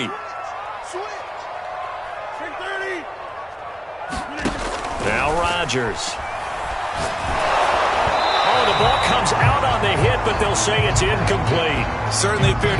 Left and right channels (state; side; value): identical; both; correlation 1.00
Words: Now Rodgers. The ball comes out on the hit, but they'll say it's incomplete. Certainly appeared